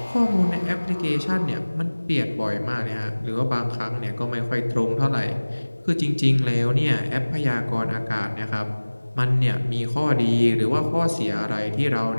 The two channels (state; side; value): inverted; both; correlation -1.00